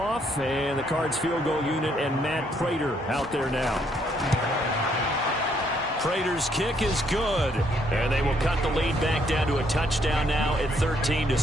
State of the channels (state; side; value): normal; both; correlation 0.70